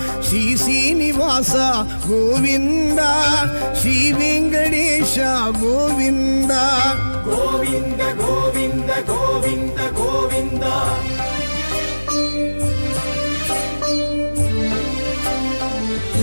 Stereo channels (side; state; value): both; inverted; correlation -1.00